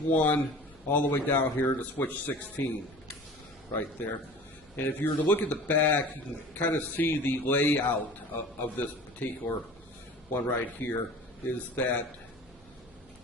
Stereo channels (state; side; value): noise; left; hum, 28 dB below the sound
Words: all the way down here to switch 16 right there. And if you were to look at the back, you can kind of see the layout of this particular one right here. Is that